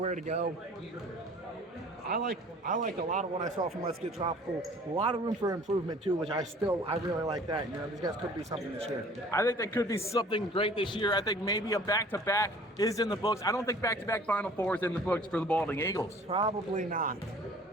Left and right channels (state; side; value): normal; both; correlation 0.50